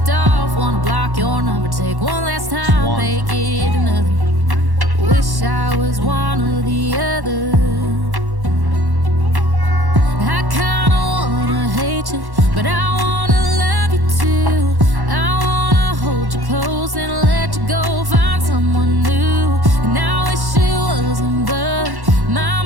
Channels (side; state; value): left; late; 1.1 ms